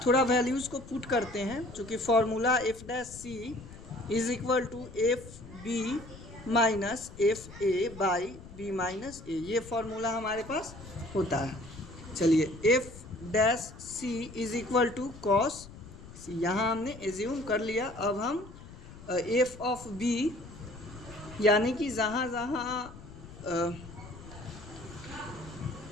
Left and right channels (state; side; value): noise; left; rumble, 16 dB below the sound